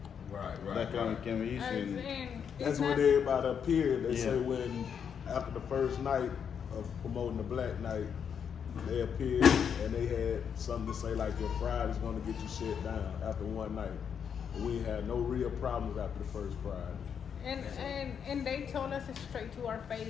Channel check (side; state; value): right; quieter; 7.5 dB